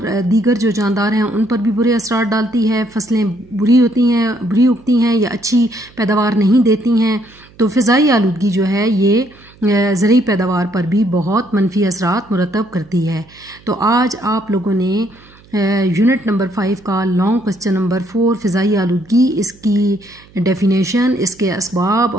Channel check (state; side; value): noise; right; hum, 26 dB below the sound